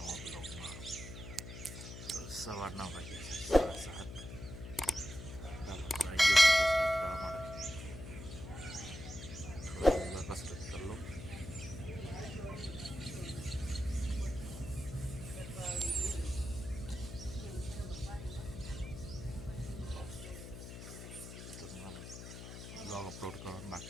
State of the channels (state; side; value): noise; left; hum, 10 dB below the sound